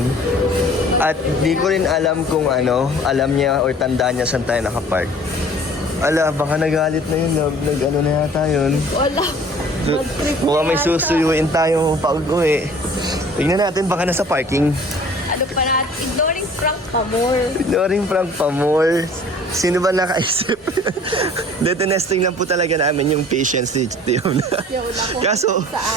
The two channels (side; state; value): both; normal; correlation 0.49